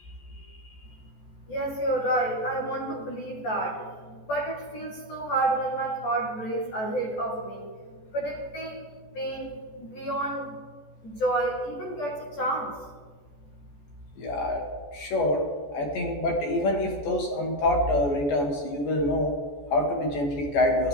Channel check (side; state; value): right; late; 14 ms